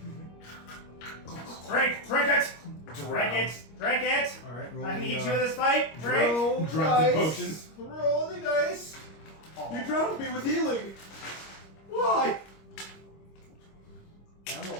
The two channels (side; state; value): right; late; 25 ms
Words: Drink it! Drink it! Drink it! All right, roll I the, need you in this fight. Drink. roll the Drop the dice. potions. Roll the dice. You drowned me with healing. Why? I'm